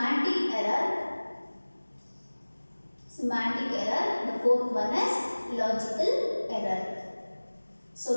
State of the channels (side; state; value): both; inverted; correlation -1.00